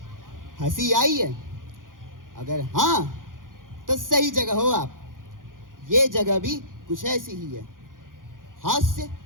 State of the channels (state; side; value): late; left; 0.90 ms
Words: हंसी आई है? अगर हाँ, तो सही जगह हो आप। ये जगह भी कुछ ऐसी ही है, हास्य